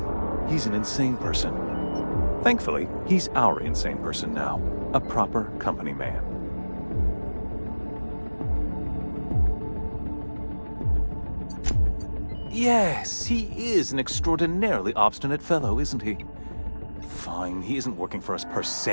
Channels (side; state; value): both; inverted; correlation -1.00